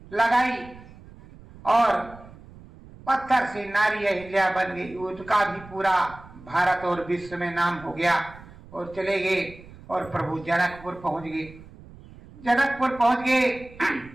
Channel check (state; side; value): noise; right; rumble, 20 dB below the sound